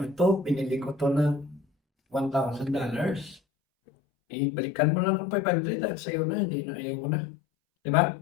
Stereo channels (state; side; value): drops out; right; at 3.4 s